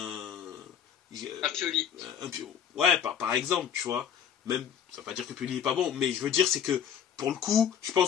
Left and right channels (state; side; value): quieter; right; 8.6 dB